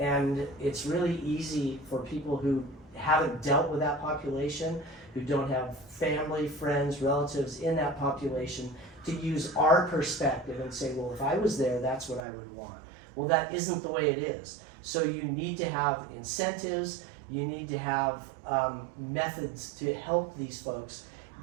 it's really easy for people who haven't dealt with that population, who don't have family, friends, relatives in that population, to use our perspective and say, well, if I was there, that's what I would want. Well, that isn't the way it is. So you need to have incentives, you need to have methods to help these folks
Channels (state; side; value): drops out; left; at 12.2 s